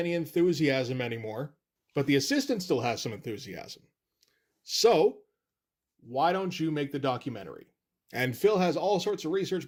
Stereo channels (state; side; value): identical; both; correlation 1.00